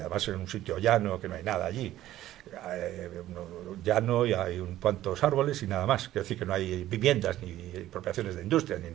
en un sitio llano que no hay nada allí, llano y hay un cuantos árboles y nada más, quiero decir que no hay viviendas ni expropiaciones de industrias ni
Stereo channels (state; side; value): quieter; left; 13.9 dB